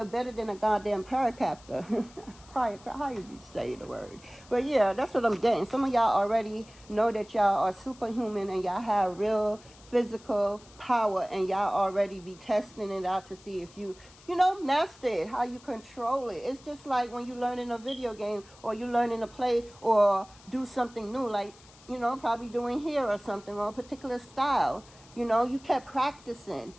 better than a goddamn paracaptor. How you say the word? But yeah, that's what I'm getting. Some of y'all already know that y'all are superhuman and y'all have real physical power, and y'all already be testing it out to see if you master it, how you control it. It's just like when you learn in a video game, or you learn in a play, or do something new, like, probably doing hair or something, or a particular style. You kept practicing,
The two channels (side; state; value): left; noise; hiss, 24 dB below the sound